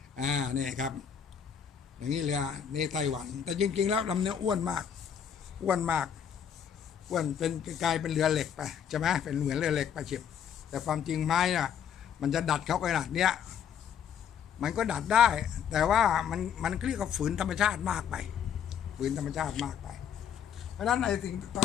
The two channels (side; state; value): right; quieter; 8.3 dB